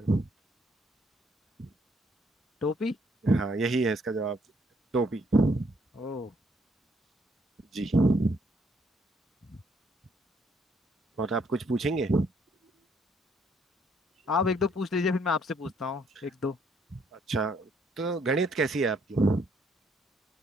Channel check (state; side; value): normal; both; correlation 0.68